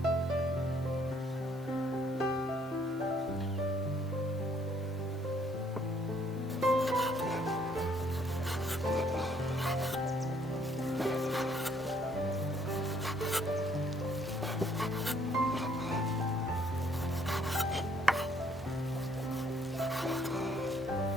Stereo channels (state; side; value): normal; both; correlation 0.65